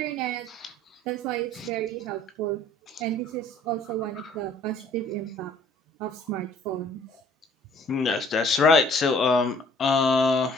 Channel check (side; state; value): both; normal; correlation 0.55